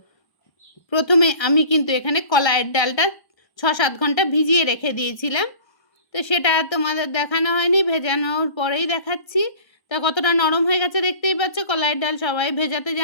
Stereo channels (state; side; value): late; right; 1.3 ms